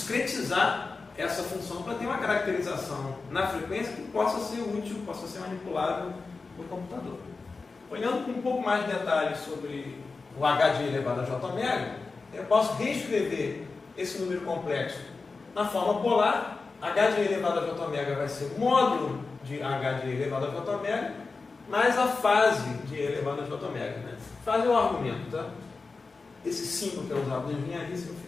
essa função para ter uma caracterização na frequência que possa ser útil, possa ser manipulável por computador. Olhando com um pouco mais de detalhes sobre o h de elevado a j omega, eu posso reescrever esse número complexo na forma polar. H de elevado a j omega vai ser módulo de h de elevado a j omega mais a fase de elevado a j omega. Né? Fase é o argumento, tá? Esse símbolo que é usado na engenharia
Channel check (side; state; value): right; quieter; 4.1 dB